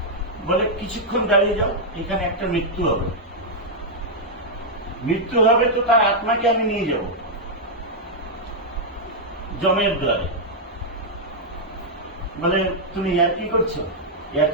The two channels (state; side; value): normal; both; correlation -0.04